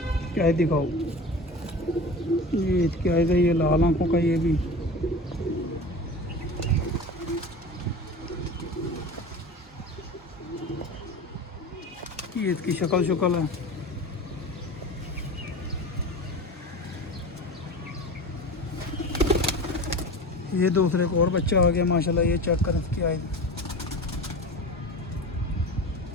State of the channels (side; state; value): both; normal; correlation 0.33